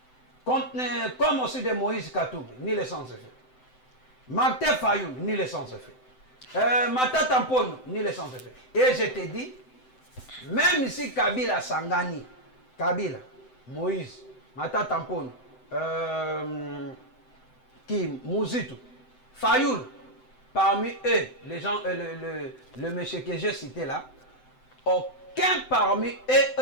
Comme aussi de Moïse Katumbi, nul et sans effet. Martin Fayoulou, nul et sans effet. Matata Mpone, nul et sans effet. Et je t'ai dit, même si Kabila Sangani, Kabila, Moïse, Matata Mpone, Mouzitu, Fayoul, parmi eux, les gens, le monsieur que j'ai cité là, aucun parmi eux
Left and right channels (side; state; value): right; late; 7.8 ms